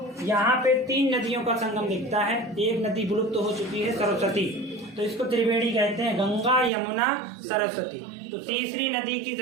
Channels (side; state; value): left; drops out; at 6.7 s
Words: यहाँ पे 3 नदियों का संगम दिखता है। एक नदी विलुप्त हो चुकी है, सरस्वती, तो इसको त्रिवेणी कहते हैं, गंगा यमुना सरस्वती। तो तीसरी नदी की